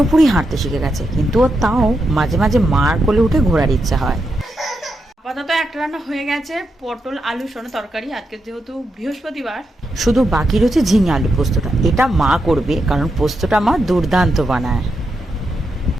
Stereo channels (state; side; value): normal; both; correlation 0.84